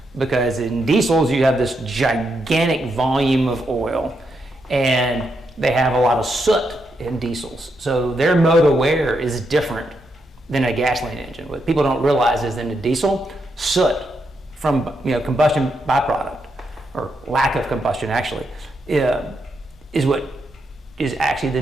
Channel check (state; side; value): normal; both; correlation 0.81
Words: because in diesels you have this gigantic volume of oil, and they have a lot of soot in diesels. So their mode of wear is different than a gasoline engine. What people don't realize is in a diesel, soot from combustion byproduct, or lack of combustion actually, is what is actually the